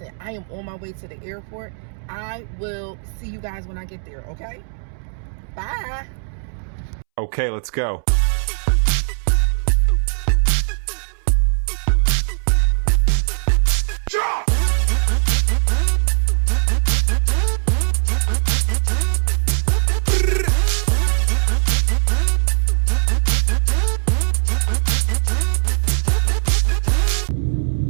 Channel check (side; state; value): left; silent; 66 dB below the other